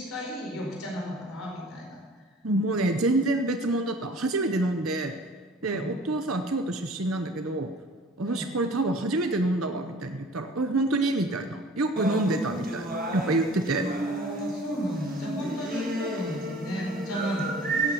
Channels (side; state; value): both; normal; correlation 0.47